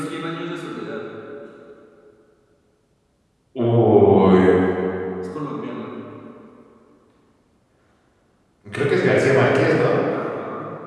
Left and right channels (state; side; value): identical; both; correlation 1.00